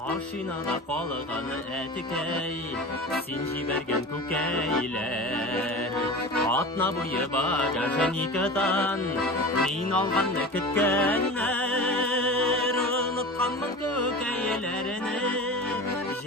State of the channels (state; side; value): normal; both; correlation 0.32